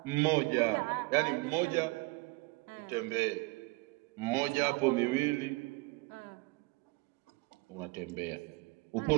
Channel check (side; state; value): left; quieter; 25.3 dB